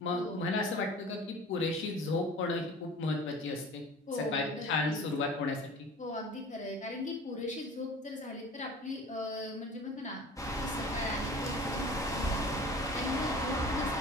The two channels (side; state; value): both; normal; correlation 0.42